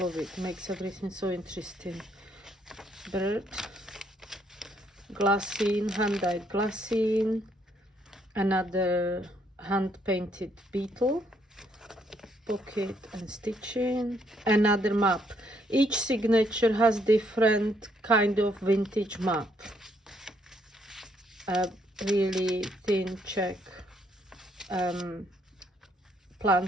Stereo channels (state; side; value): normal; both; correlation 0.70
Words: it. Makes everything so interesting. Bird, glassine, hand dyed glassine, another hand painted beetle, pocket and stitching, another map. Each signature has different kind of vintage map. A really thin Czech